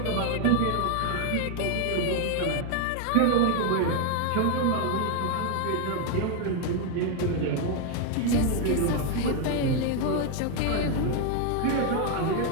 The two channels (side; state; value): both; different; correlation 0.00